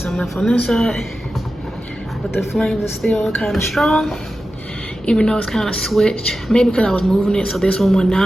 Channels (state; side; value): normal; both; correlation 0.93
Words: left on this side. But the flames are still kind of strong, even though it's kind of switched. Maybe because I was moving it, so this one went